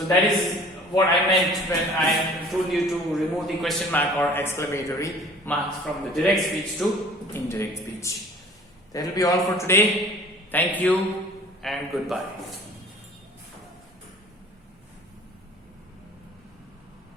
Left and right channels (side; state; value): both; normal; correlation 0.48